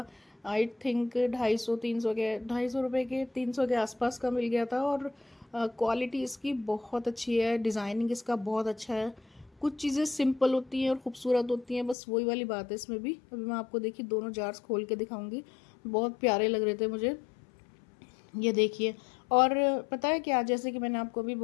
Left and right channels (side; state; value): right; drops out; at 12.0 s